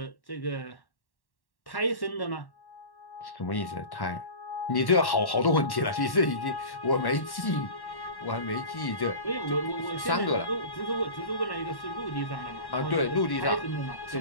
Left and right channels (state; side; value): late; right; 1.1 ms